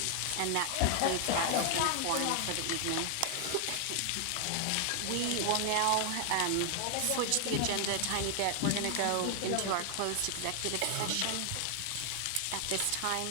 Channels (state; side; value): different; both; correlation 0.00